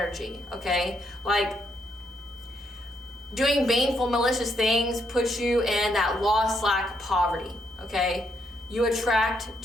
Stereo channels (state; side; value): normal; both; correlation 0.76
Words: okay? Like doing baneful, malicious things puts you in that lost, lack, poverty, okay? You attract